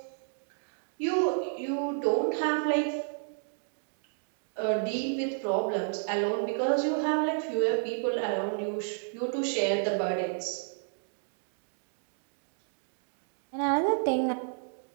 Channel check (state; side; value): silent; left; digital silence